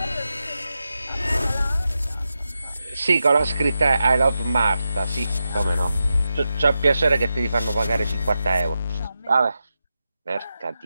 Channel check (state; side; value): inverted; both; correlation -0.89